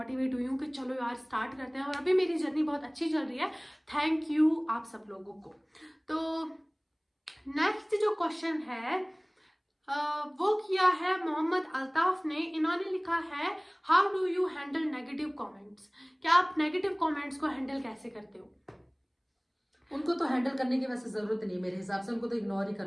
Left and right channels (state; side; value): identical; both; correlation 1.00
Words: हुई हूँ कि चलो यार स्टार्ट करते हैं, और अभी मेरी जर्नी बहुत अच्छी चल रही है, थैंक यू आप सब लोगों को। तो नेक्स्ट जो क्वेश्चन है वो किया है मोहम्मद अल्ताफ ने, इन्होंने लिखा है how do you handle negative comments, क्या आप नेगेटिव कमेंट्स को हैंडल कैसे करते हो? उनको तो हैंडल करने की वैसे जरूरत नहीं, मेरे हिसाब से उनको तो इग्नोर ही